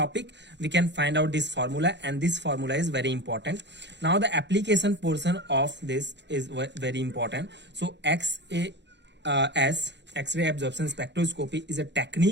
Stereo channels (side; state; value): left; late; 0.51 ms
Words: we can find out this formula, and this formula is very important. Now the application portion of this is very important. So X-ray absorption spectroscopy is a